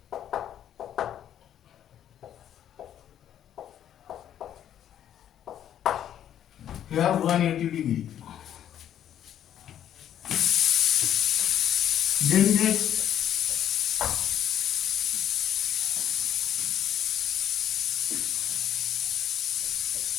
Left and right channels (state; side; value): quieter; right; 10.4 dB